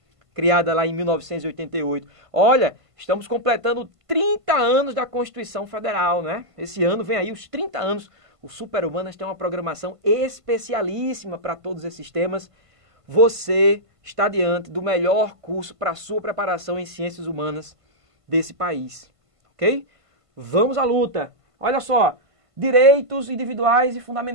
criada lá em 1988. Olha, estamos completando 30 anos da Constituição Federal, né? Esse ano vem aí os 30 anos. O Super-Humanas tem uma programação especialíssima para todos esses temas. Você está diante do melhor curso para a sua preparação em ciências humanas desse país, ok? Vamos à luta. Olha só, direitos individuais e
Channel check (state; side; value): late; left; 1.5 ms